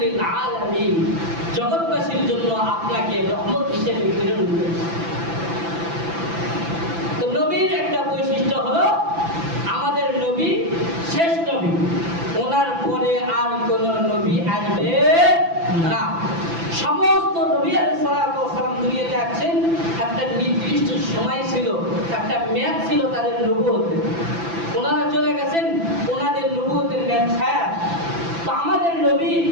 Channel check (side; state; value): left; late; 5.9 ms